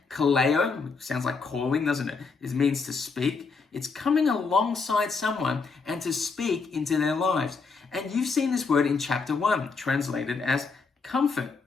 Kaleo, sounds like calling, doesn't it? It means to speak. It's coming alongside someone and to speak into their lives. And you've seen this word in chapter 1, translated as comfort,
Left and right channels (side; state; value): right; quieter; 4.7 dB